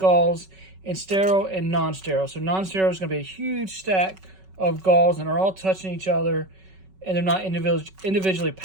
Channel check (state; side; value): late; left; 5.3 ms